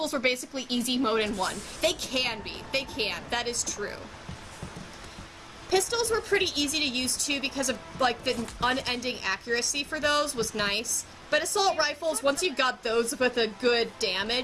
were basically easy mode in 1. They can be. They can. That is true. Pistols were pretty easy to use too because of, like, the unending accuracy for those was nice. But assault rifles, once you got those with a good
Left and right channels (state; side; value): identical; both; correlation 1.00